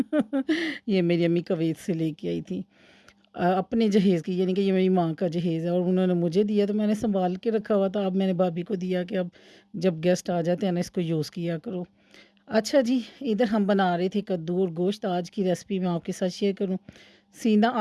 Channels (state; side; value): identical; both; correlation 1.00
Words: ये मेरी अम्मी कवैत से लेके आई थी अपने जहेज़ की, यानी कि ये मेरी माँ का जहेज़ है और उन्होंने मुझे दिया तो मैंने सँभाल के रखा हुआ था। अब मैंने भाभी को दिया कि अब जब गेस्ट आ जाते हैं ना इसको यूज़ किया करो। अच्छा जी, इधर हम बना रहे थे कद्दू और गोश्त। आज की रेसिपी मैं आपके साथ शेयर करूँ। सीना